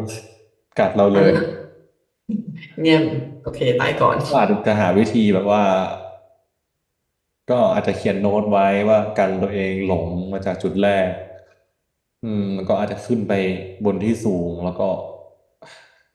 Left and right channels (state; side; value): identical; both; correlation 1.00